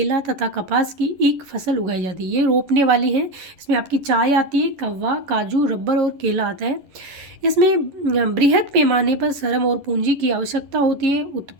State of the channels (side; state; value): left; late; 11 ms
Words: तथा कपास की एक फसल उगाई जाती है। ये रोपने वाली है। इसमें आपकी चाय आती है, कव्वा, काजू, रबर और केला आता है। इसमें बृहद पैमाने पर श्रम और पूंजी की आवश्यकता होती है।